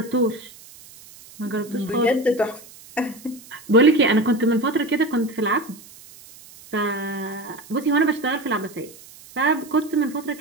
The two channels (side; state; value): right; noise; hiss, 21 dB below the sound